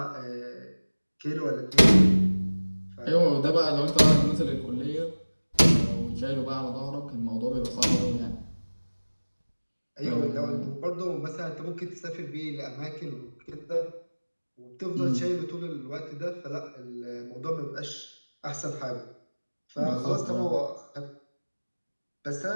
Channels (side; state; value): both; inverted; correlation -1.00